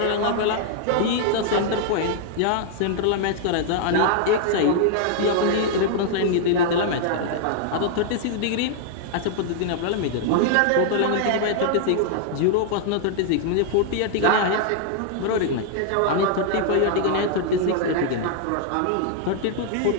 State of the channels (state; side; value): different; both; correlation -0.01